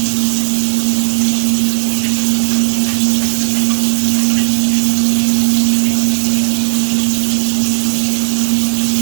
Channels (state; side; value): silent; left; digital silence